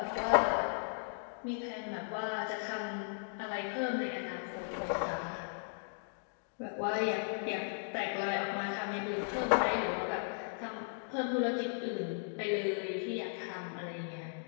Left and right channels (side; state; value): right; silent; digital silence